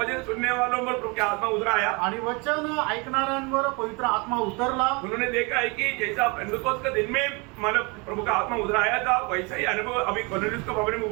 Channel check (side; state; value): left; quieter; 29.2 dB